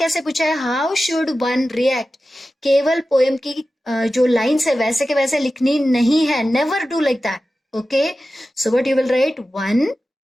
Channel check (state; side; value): normal; both; correlation 0.94